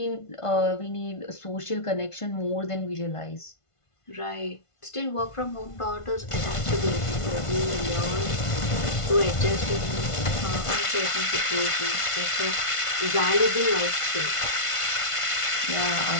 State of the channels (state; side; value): late; right; 1.5 ms